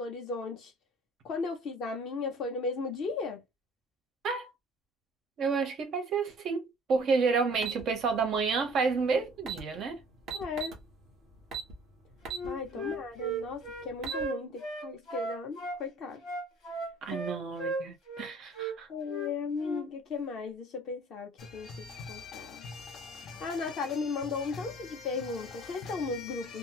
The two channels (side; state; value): both; normal; correlation 0.51